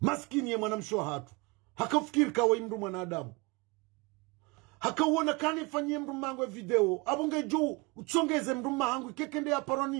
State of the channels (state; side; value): quieter; left; 26.9 dB